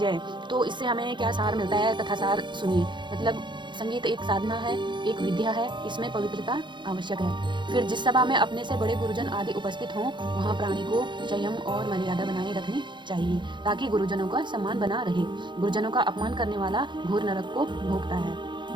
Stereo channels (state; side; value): late; left; 0.23 ms